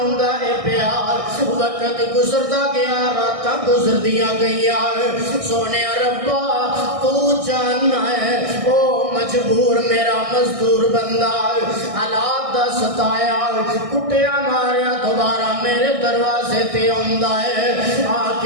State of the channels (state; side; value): late; left; 1.6 ms